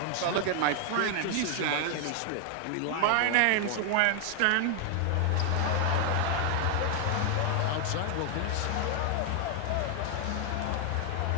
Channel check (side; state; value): both; different; correlation 0.00